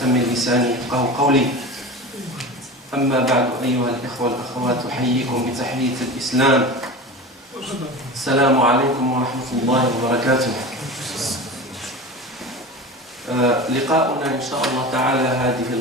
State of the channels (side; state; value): both; normal; correlation 0.31